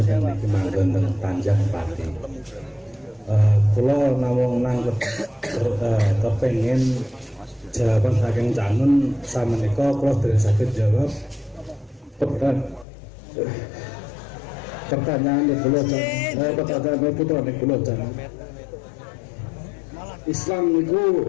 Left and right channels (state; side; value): drops out; right; at 12.9 s